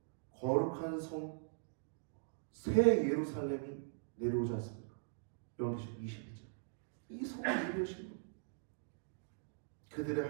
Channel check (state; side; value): silent; left; digital silence